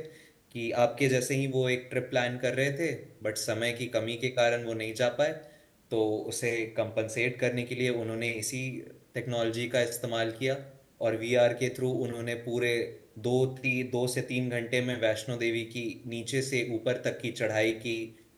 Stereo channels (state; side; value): identical; both; correlation 1.00